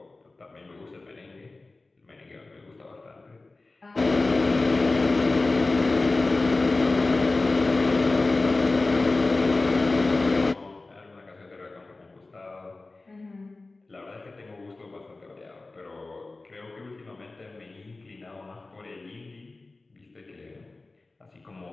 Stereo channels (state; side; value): quieter; right; 3.3 dB